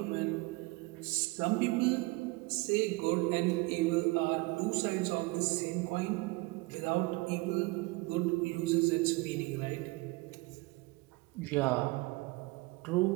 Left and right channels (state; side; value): quieter; left; 23.9 dB